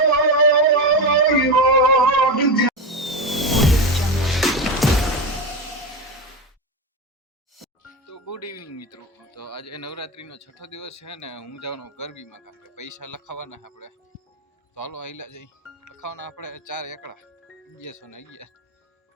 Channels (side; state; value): both; normal; correlation 0.17